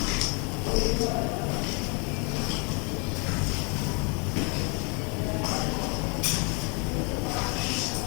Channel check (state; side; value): quieter; right; 34.0 dB